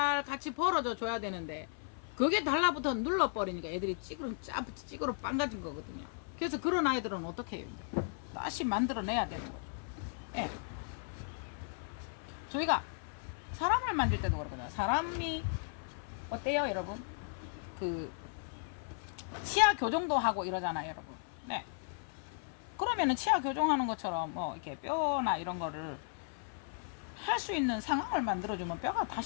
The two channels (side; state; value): right; silent; 54 dB below the other